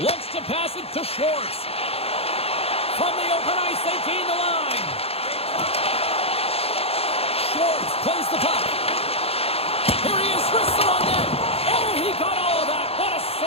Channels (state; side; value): late; right; 0.29 ms